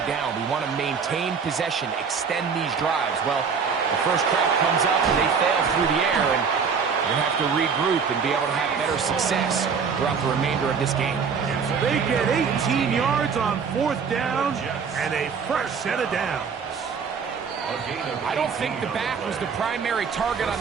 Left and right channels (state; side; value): quieter; left; 6.0 dB